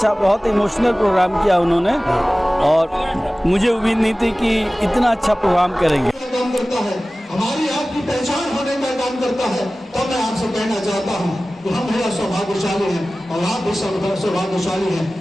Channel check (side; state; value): both; normal; correlation 0.97